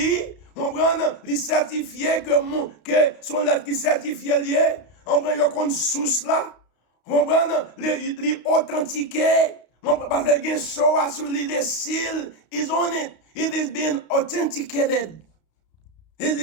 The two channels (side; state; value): right; late; 32 ms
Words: On prend les certifiés que son lettre qui certifié lié. On prend le compte source là. On prend les authentiqués. Parce que against so assouli the seal is on it. It is being authenticated.